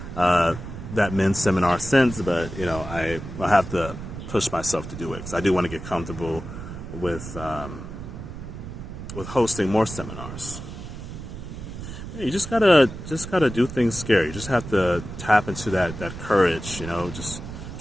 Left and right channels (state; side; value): noise; right; rumble, 10 dB below the sound